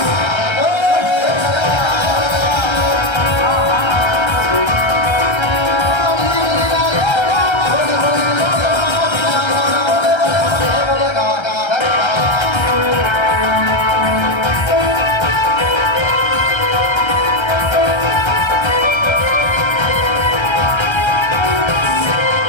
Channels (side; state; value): right; late; 1.3 ms